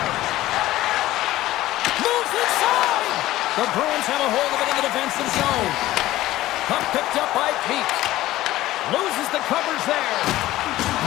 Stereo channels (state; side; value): quieter; right; 15.8 dB